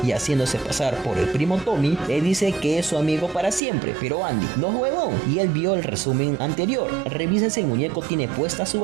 y haciéndose pasar por el primo Tommy, le dice que es su amigo para siempre. Pero Andy no es huevón y él vio el resumen anterior. Revisa si el muñeco tiene puesta su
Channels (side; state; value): left; drops out; at 3.6 s